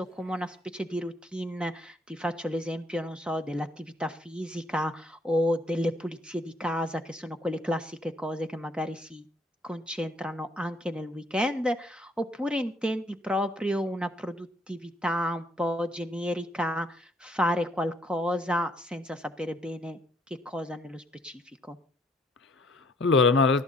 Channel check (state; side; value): normal; both; correlation 0.66